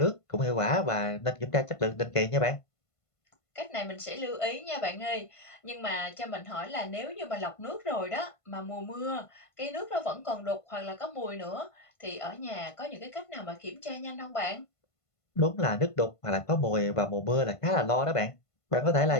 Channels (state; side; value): late; right; 1.5 ms